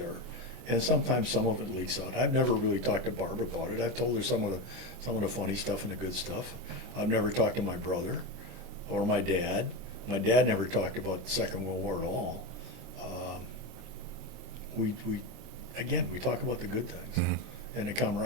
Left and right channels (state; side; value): late; left; 24 ms